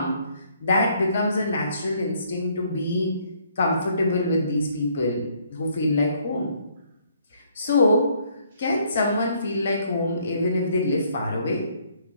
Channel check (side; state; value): both; inverted; correlation -0.66